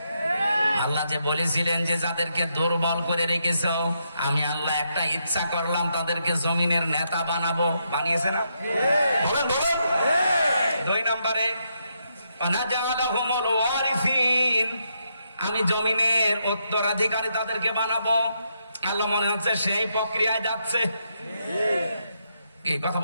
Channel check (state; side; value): inverted; both; correlation -0.79